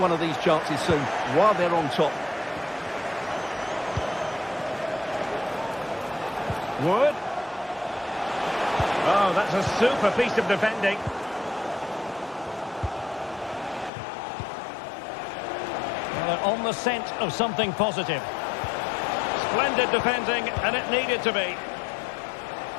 of these chances soon while they're on top. Wood. Oh, that's a super piece of defending. Well, they're on the scent of something positive. Splendid defending, and it needed to be.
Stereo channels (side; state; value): right; drops out; at 13.9 s